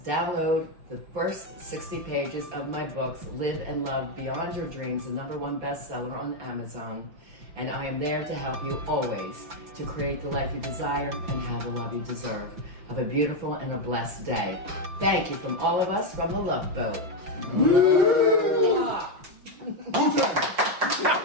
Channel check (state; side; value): late; left; 5.9 ms